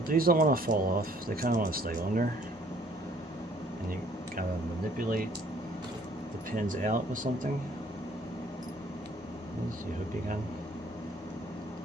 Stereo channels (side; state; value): both; normal; correlation 0.60